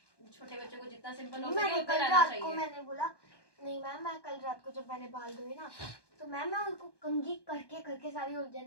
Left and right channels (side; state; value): right; late; 1.2 ms